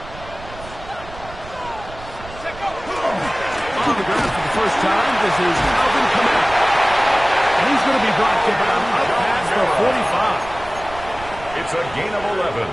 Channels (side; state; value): right; noise; rumble, 16 dB below the sound